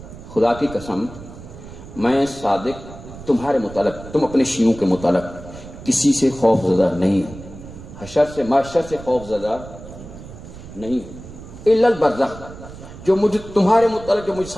خدا کی قسم میں صادق تمہارے متعلق، تم اپنے شیعوں کے متعلق کسی سے خوف زدہ نہیں ہوں، حشر سے محشر سے خوف زدہ نہیں ہوں، الا البرزخ، جو مجھے تمہارے متعلق جو مجھ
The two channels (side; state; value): right; noise; rumble, 15 dB below the sound